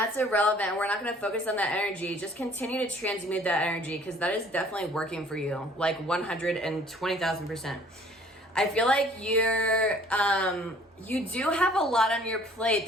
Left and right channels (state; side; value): normal; both; correlation 0.55